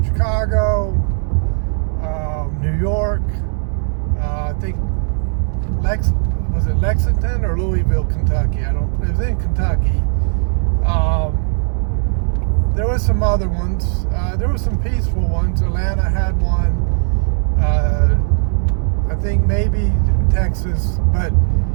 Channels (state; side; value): silent; left; digital silence